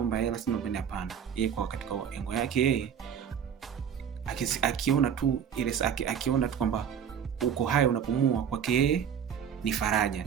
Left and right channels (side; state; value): left; quieter; 8.2 dB